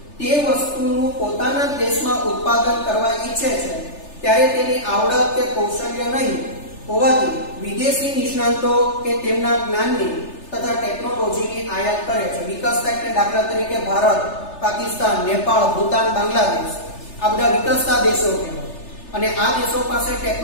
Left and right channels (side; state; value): right; late; 3.3 ms